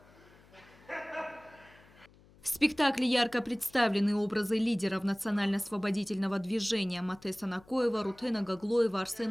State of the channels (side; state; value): left; noise; hum, 26 dB below the sound